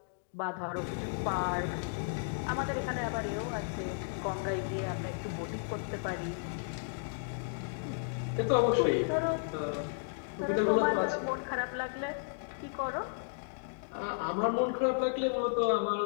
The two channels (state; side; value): silent; right; digital silence